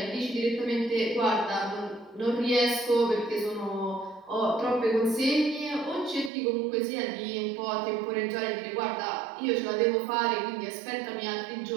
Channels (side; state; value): left; drops out; at 6.3 s